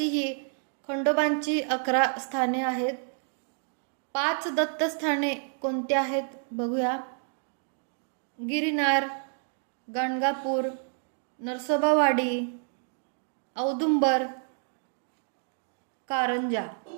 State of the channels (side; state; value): left; silent; 59 dB below the other